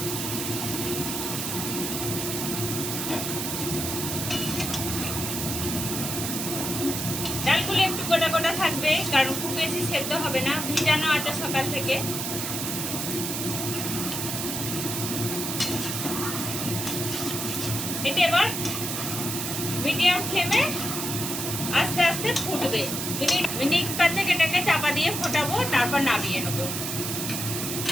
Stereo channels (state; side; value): noise; right; hiss, 3 dB below the sound